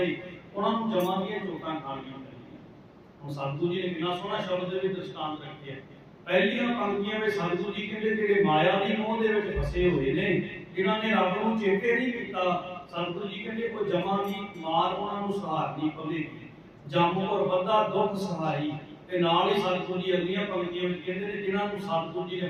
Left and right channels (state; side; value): identical; both; correlation 1.00